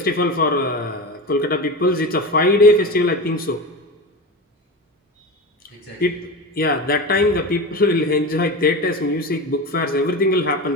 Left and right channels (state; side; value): normal; both; correlation 0.25